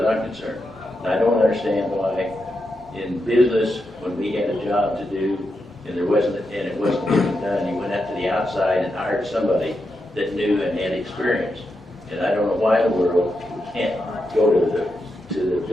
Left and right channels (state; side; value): normal; both; correlation 0.85